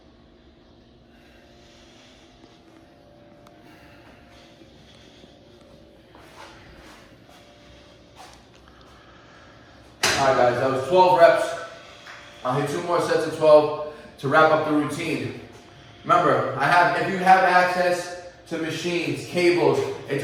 Alright guys, that was 12 reps. I'll hit 2 more sets of 12 to wrap up the routine. Remember, if you have access to machines, cables,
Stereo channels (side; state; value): both; identical; correlation 1.00